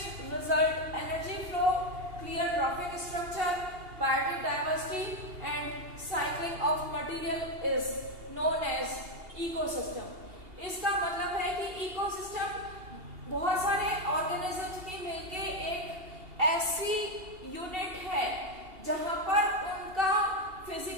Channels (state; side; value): late; left; 2.8 ms